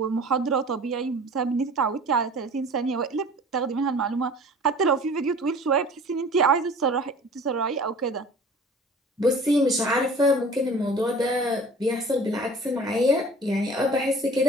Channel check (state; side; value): normal; both; correlation 0.45